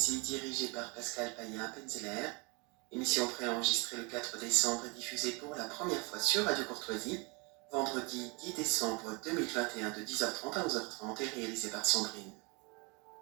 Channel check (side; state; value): left; quieter; 29.9 dB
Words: dirigé par Pascal Payen-Penzeler. Émission préenregistrée le 4 décembre et diffusée pour la première fois sur Radio Courtoisie, vendredi 10 décembre 2021 de 10h30 à 11h30 et réalisée par Sandrine.